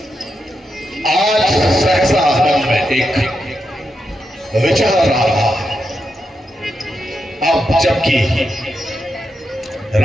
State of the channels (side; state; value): both; normal; correlation 0.85